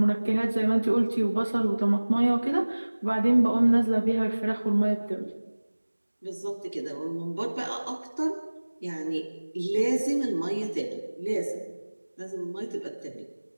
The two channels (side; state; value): both; inverted; correlation -1.00